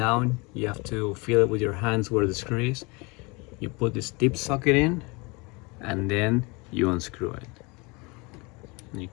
you have to feel it with your hands where the screw is, you put this tip socket in, and then you unscrew it, and you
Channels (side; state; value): right; quieter; 27.3 dB